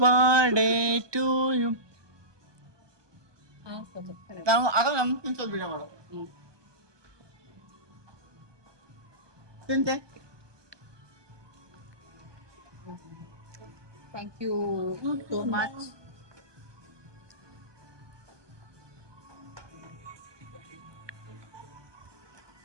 birthday to you. ತಿಂತೆ. Thank you so much.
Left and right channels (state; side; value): late; left; 1.2 ms